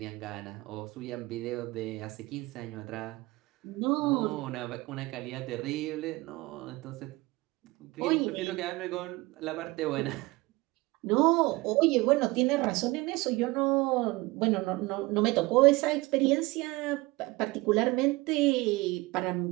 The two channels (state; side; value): quieter; left; 21.8 dB